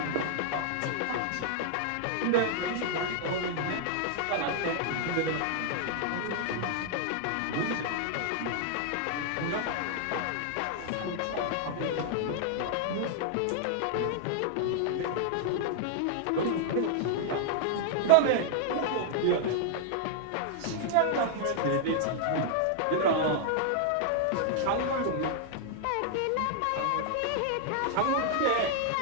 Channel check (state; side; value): different; both; correlation -0.01